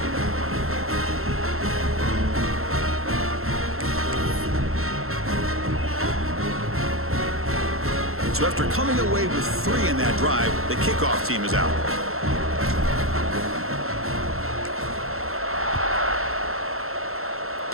So after coming away with 3 in that drive, the kickoff team is out.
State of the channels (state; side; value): late; left; 0.62 ms